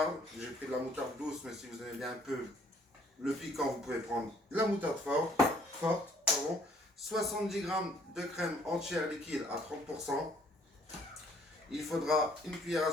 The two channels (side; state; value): both; normal; correlation 0.61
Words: j'ai pris de la moutarde douce, mais si vous aimez bien un peu le piquant, vous pouvez prendre de la moutarde forte, 70 g de crème entière liquide à 30%. Il faudra une cuillère à